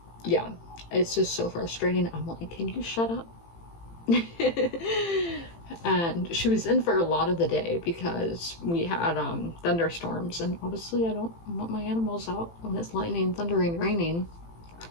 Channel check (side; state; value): right; late; 18 ms